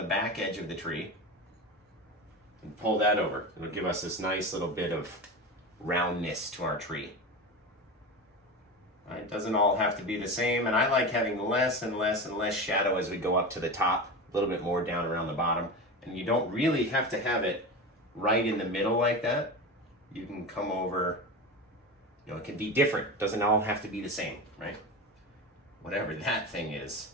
back edge of the tree. And pull that over. It'll give us this nice little bit of roundness to our tree. Right? It doesn't all have to be the same, and I like having less and less and less shadow as we go up to the top, a little bit more down around the bottom. And you don't really have to have it right in the middle like that. You can come over, you know, it can be different. It doesn't all have to be the same, right? Whatever that thing is.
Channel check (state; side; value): normal; both; correlation 0.25